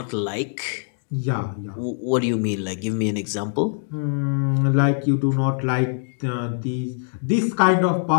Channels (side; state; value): right; silent; digital silence